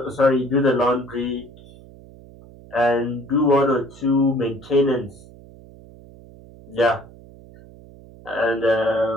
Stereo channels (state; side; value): noise; right; hum, 21 dB below the sound